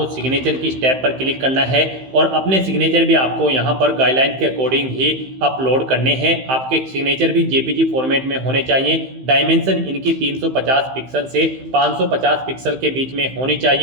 सिग्नेचर की स्टेप पर क्लिक करना है और अपने सिग्नेचर भी आपको यहाँ पर गाइडलाइन के अकॉर्डिंग ही अपलोड करने हैं। आपके सिग्नेचर भी JPG फॉर्मेट में होने चाहिए। डायमेंशन इनकी 350 पिक्सल से 550 पिक्सल के बीच में होनी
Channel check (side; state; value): left; late; 15 ms